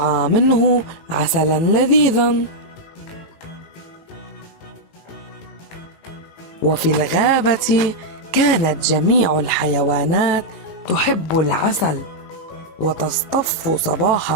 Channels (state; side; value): late; right; 18 ms